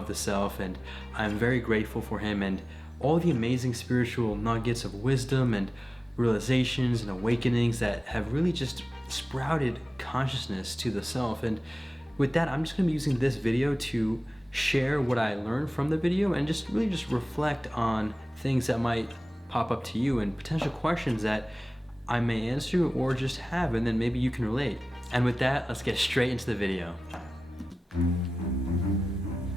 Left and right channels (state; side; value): normal; both; correlation 0.97